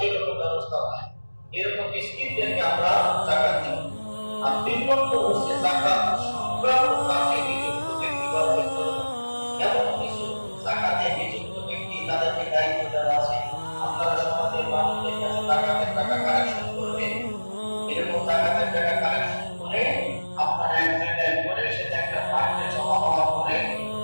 ব্যবস্থা হয়। এরকম মিসকিনদেরকে আমরা জাকাত দিই। আর ৩ নম্বর হচ্ছে জাকাত সংক্রান্ত কাজে নিযুক্ত ব্যক্তিবর্গের জন্য। এমন কিছু জাকাতে নিযুক্ত ব্যক্তি তাদেরকে দায়িত্ব দেওয়া আছে, আপনারা সমাজের মানুষদের কাছে জাকাতের টাকা কালেকশন করবেন। এরকম জাকাতের টাকা কালেকশন করে আপনারা এক জায়গায় করে সেটা একটা ফান্ডে জমা হওয়ার পরে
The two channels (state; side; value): inverted; both; correlation -1.00